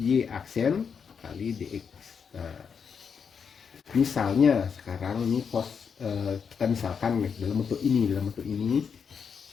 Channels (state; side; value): quieter; right; 6.5 dB